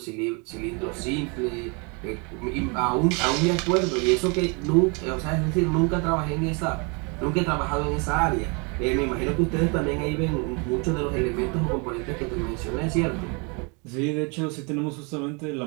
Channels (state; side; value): quieter; left; 32.4 dB